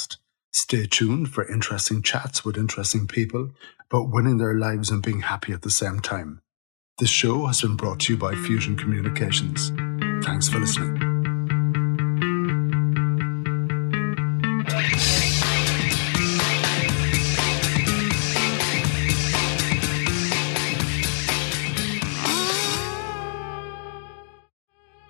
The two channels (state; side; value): silent; right; digital silence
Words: Stay tuned for interesting chats with interesting people about winning their lives and being happy at the same time. This show has been brought to you by Fusion Communications. Thanks for listening.